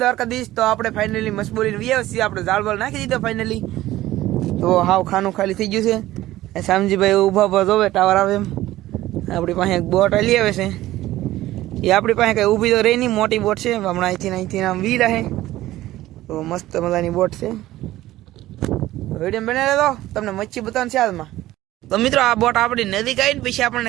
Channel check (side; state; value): left; quieter; 15.6 dB